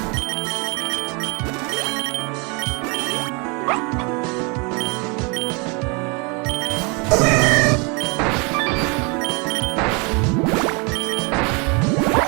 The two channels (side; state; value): left; quieter; 31.0 dB